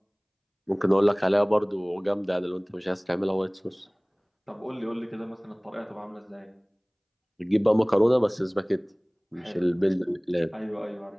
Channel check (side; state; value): both; identical; correlation 1.00